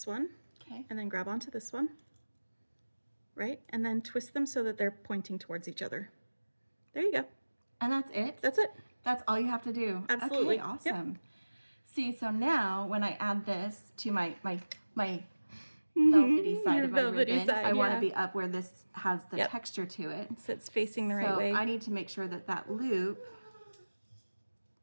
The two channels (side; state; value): both; inverted; correlation -1.00